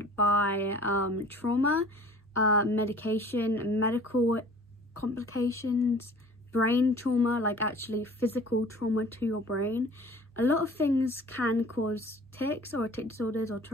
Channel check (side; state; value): both; normal; correlation 0.47